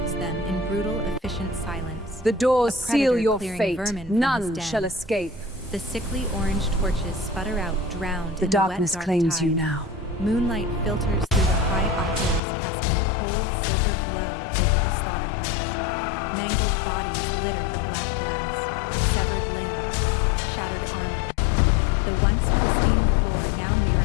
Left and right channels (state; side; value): drops out; right; at 12.4 s